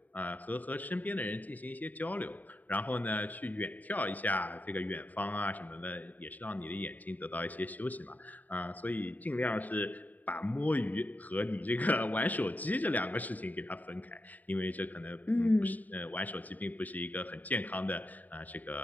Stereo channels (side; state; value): right; late; 0.081 ms